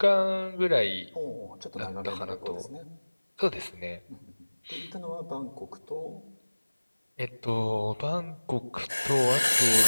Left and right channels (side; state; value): both; inverted; correlation -1.00